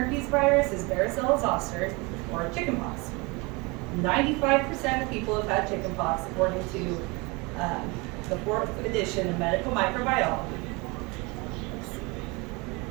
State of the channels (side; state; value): left; quieter; 26.9 dB